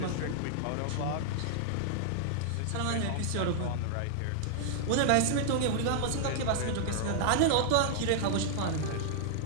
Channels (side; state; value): both; different; correlation -0.01